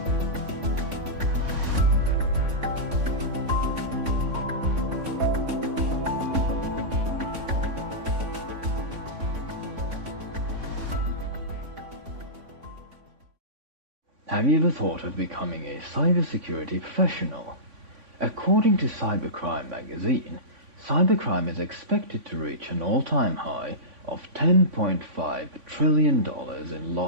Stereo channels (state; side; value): late; left; 3.5 ms